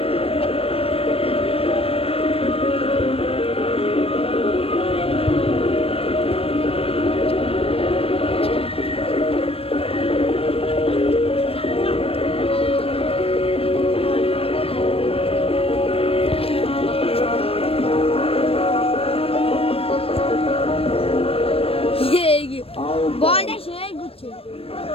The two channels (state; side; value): late; right; 0.28 ms